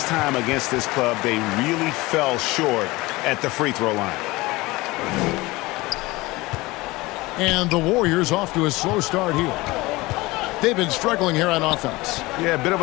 time against this club, they really fell short at the free throw line. And the Warriors off to a slow start here. They've been struggling here on offense. Yeah, a bit of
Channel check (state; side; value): quieter; right; 21.3 dB